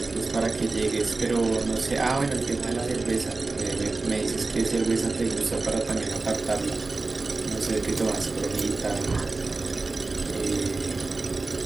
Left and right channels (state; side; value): quieter; left; 3.6 dB